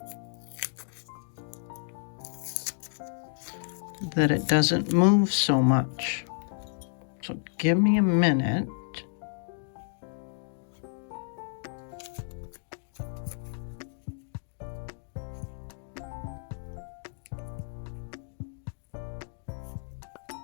that it doesn't move so much. So give me a minute.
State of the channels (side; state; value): right; silent; digital silence